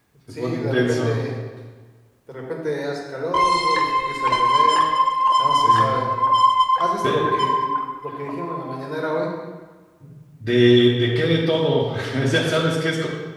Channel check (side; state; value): both; identical; correlation 1.00